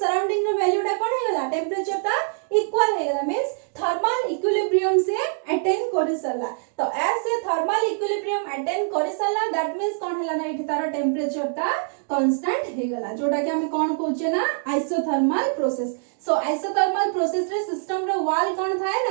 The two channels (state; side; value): silent; left; digital silence